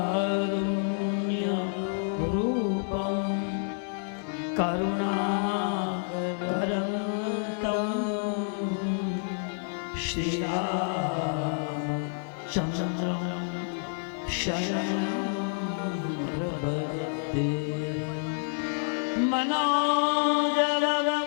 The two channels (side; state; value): right; silent; digital silence